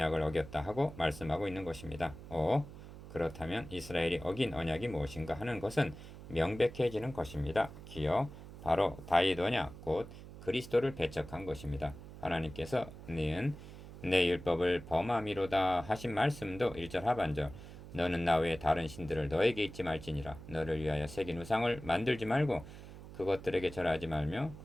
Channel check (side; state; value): right; noise; hum, 14 dB below the sound